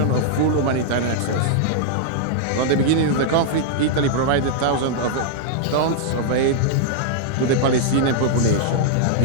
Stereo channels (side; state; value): both; different; correlation -0.01